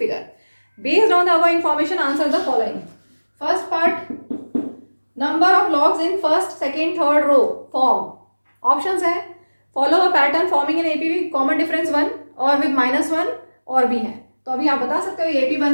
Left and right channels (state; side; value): inverted; both; correlation -1.00